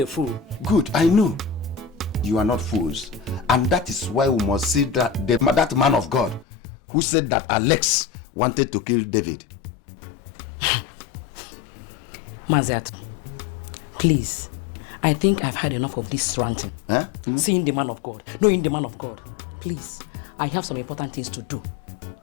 fool. Good, I know. You are not fools. And that is why we must see that man of God who said that Alex wanted to kill David. Maziat, please. I think I've had enough of this ranting. Huh? Seeing the man of God, knowing the man of God. Please, I have some important things to do.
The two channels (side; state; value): right; drops out; at 6.5 s